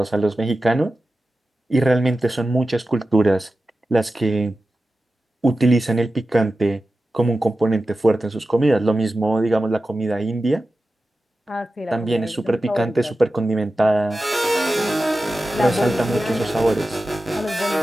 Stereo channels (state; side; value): normal; both; correlation 0.94